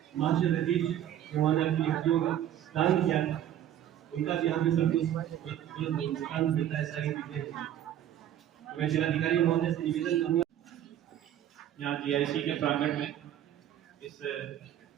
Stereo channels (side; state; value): left; quieter; 11.2 dB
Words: मास्टर रजीज जिन्होंने अपनी हड्डियों का दान किया, उनका भी यहाँ पे सब कुछ दान देता है। सारी चीजें मैं जिलाधिकारी महोदय से निवेदन करूँगा यहाँ जीआईसी के प्रांगण में इस